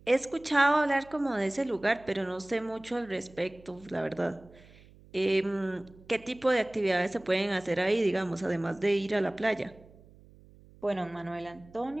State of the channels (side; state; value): right; noise; hum, 24 dB below the sound